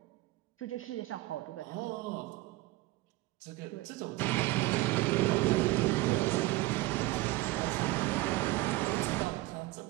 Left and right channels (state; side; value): quieter; left; 18.9 dB